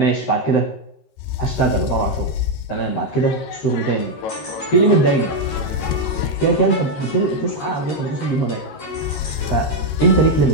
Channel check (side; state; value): right; late; 13 ms